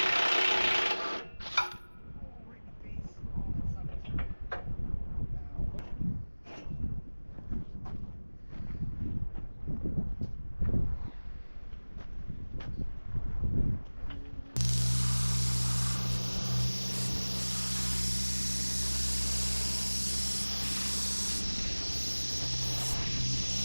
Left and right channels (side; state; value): both; inverted; correlation -1.00